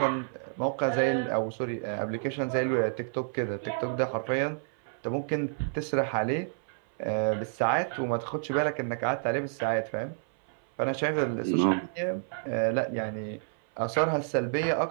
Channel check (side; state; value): left; silent; 58 dB below the other